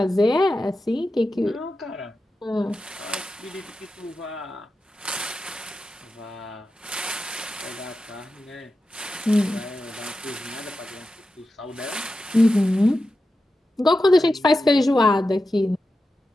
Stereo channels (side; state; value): both; normal; correlation 0.91